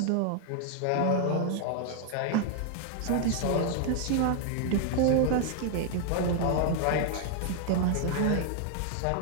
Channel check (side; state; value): both; different; correlation 0.00